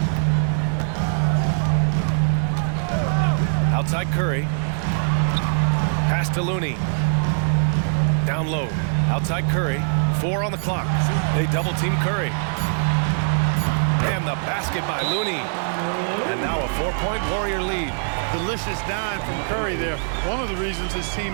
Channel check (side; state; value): left; silent; 57 dB below the other